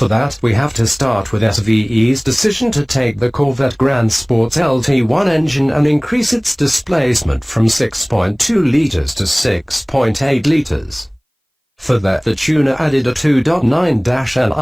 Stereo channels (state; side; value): identical; both; correlation 1.00